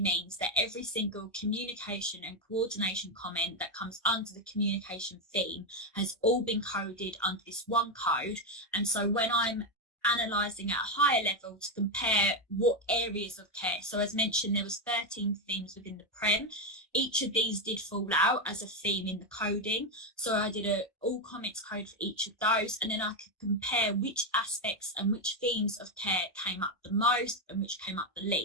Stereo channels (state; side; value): normal; both; correlation 0.07